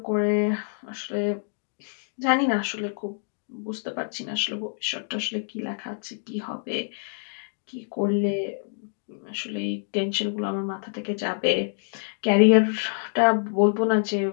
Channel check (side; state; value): right; silent; digital silence